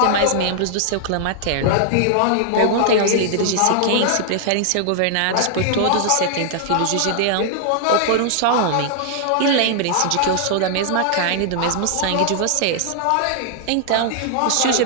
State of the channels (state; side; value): different; both; correlation -0.01